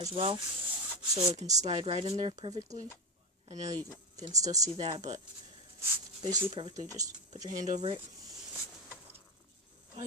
well, so it can slide right in there perfectly. I know you can still see that, but basically perfectly. Just put your hand over it. Oh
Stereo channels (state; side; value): normal; both; correlation 0.13